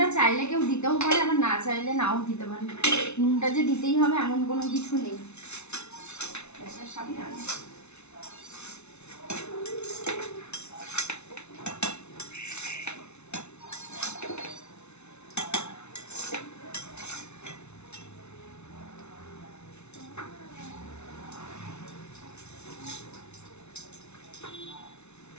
চাইলে কেউ দিতেও পারে, আবার না চাইলে নাও দিতে পারে, নুনটা যে দিতেই হবে এমন কোনো কিছু নেই। সামনে আনো।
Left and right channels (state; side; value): late; right; 0.81 ms